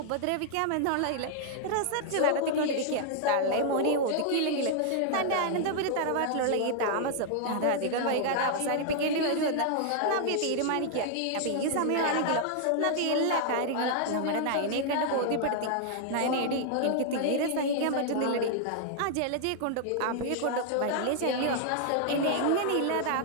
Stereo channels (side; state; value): both; different; correlation -0.01